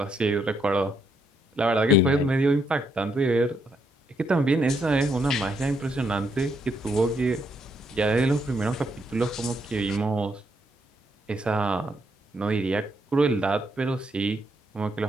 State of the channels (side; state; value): both; normal; correlation 0.76